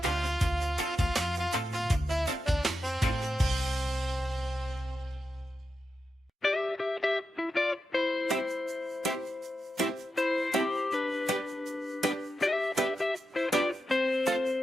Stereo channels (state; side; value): normal; both; correlation 0.89